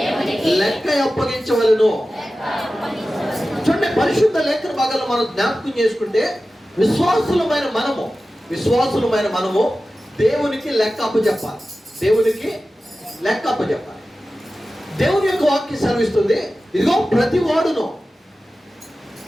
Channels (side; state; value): both; normal; correlation 0.95